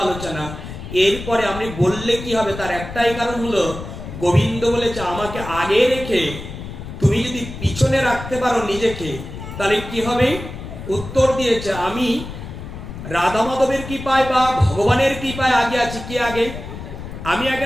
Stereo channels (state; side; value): noise; left; rumble, 10 dB below the sound